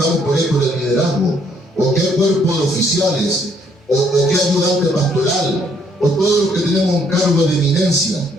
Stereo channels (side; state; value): both; normal; correlation 0.68